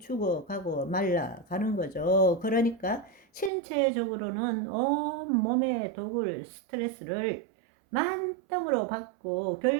말라가는 거죠. 그러니까 신체적으로는 온몸의 독을 스트레스를 만땅으로 받고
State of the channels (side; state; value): left; drops out; at 3.5 s